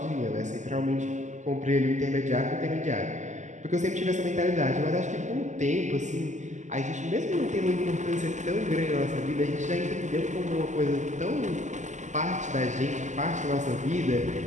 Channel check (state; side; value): late; left; 0.34 ms